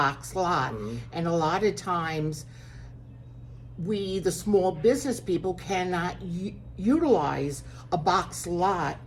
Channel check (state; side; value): identical; both; correlation 1.00